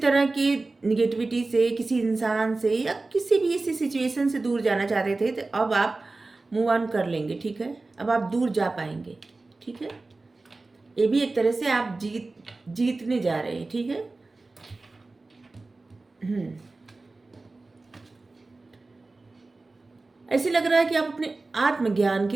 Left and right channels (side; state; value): left; quieter; 3.4 dB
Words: की निगेटिविटी से, किसी इंसान से या किसी भी ऐसी सिचुएशन से दूर जाना चाहते थे, तो अब आप मूव ऑन कर लेंगे, ठीक है। अब आप दूर जा पाएंगे, ठीक है। ये भी एक तरह से आप जीतने जा रहे हैं, ठीक है। ऐसे लग रहा है कि आप अपने आत्मज्ञान